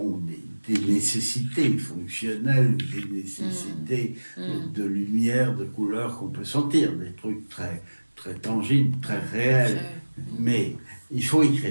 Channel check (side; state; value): both; inverted; correlation -1.00